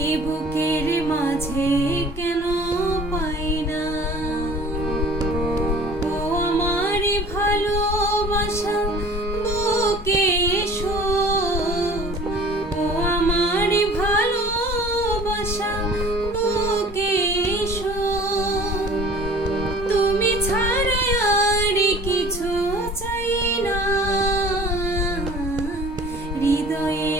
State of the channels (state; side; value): normal; both; correlation 0.47